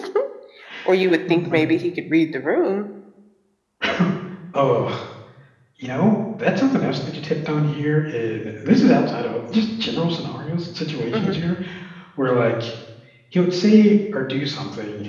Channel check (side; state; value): both; identical; correlation 1.00